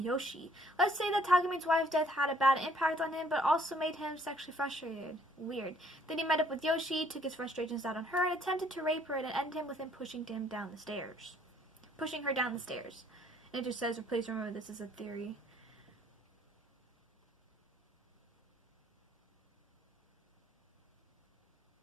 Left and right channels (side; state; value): both; normal; correlation 0.62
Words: Let's say that Takamine's wife's death had a bad impact on him, but also made him sexually frustrated. Weird. Then he met up with Yoshi, took his frustrations out on her, and attempted to rape her, and it ended him with him pushing her down the stairs. And it just says, please remember this is a theory.